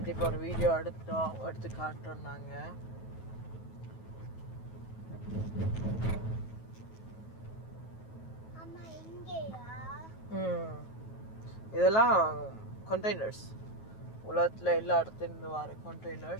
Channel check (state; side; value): late; right; 9.3 ms